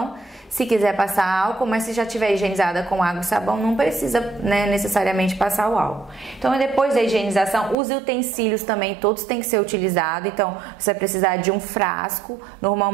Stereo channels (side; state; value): left; drops out; at 7.8 s